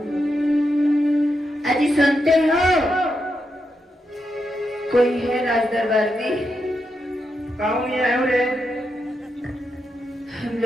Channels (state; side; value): normal; both; correlation 0.84